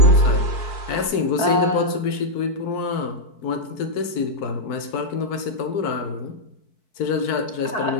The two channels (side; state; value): right; late; 4.6 ms